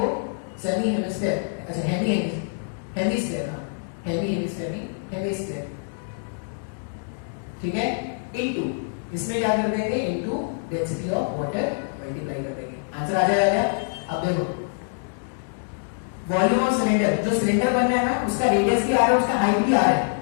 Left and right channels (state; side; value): silent; right; digital silence